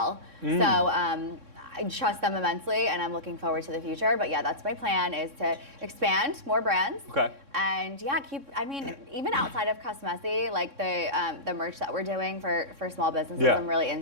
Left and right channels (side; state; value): left; late; 3.6 ms